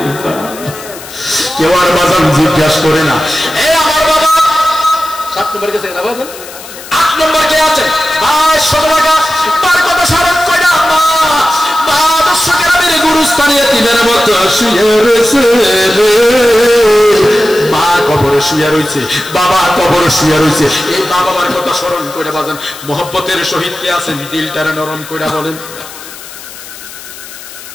কেউ আর বাজান জিজ্ঞাসা করে না। এই আমার বাবা 7 নম্বর গেছে না, বাজান 8 নম্বর কে আছে? 2200 টাকা। তার কথা স্মরণ করে আম্মা মা দর্শকেরা মেরে গুরুস্থানে তিনের মতো শুয়ে রয়েছে, মা কবরে শুয়ে রয়েছে, বাবা কবরে শুয়ে রয়েছে। এই মা বাবার কথা স্মরণ করে বাজান মোহব্বতের সহিত কে আছেন? দিলটারে নরম করে বলেন।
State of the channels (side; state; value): left; noise; hiss, 15 dB below the sound